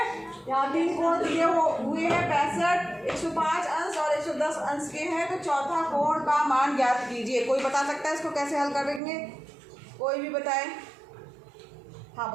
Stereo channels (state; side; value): drops out; left; at 9.0 s